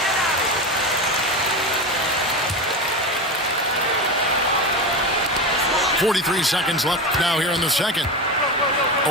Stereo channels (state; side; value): normal; both; correlation 0.21